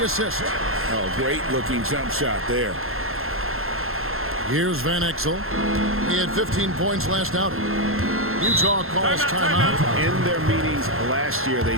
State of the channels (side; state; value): left; late; 0.61 ms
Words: assist. Oh, great looking jump shot there. Here's Van Exel. He had 15 points last outing. Utah calls timeout. In their meetings last year, they